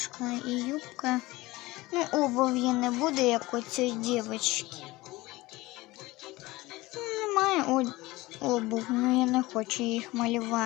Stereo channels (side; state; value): right; quieter; 20.1 dB